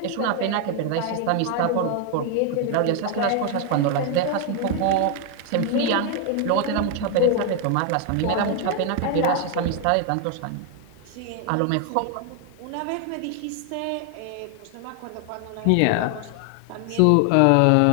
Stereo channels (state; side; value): different; both; correlation 0.00